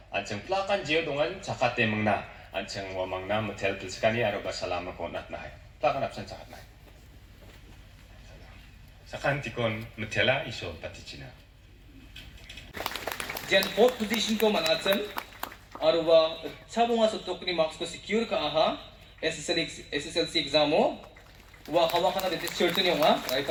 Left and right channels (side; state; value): both; identical; correlation 1.00